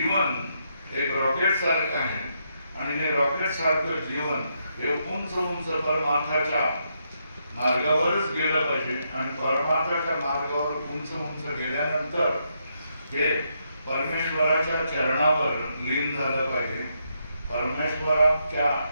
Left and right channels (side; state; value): both; inverted; correlation -0.79